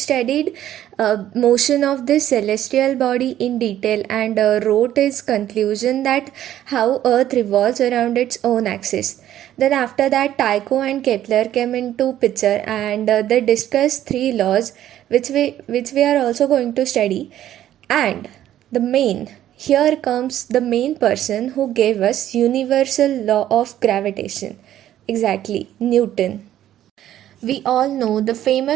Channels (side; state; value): left; quieter; 12.1 dB